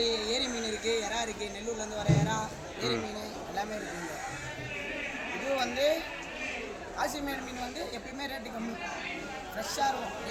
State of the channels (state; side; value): identical; both; correlation 1.00